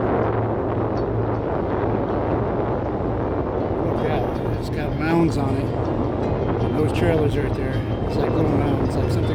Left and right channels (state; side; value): identical; both; correlation 1.00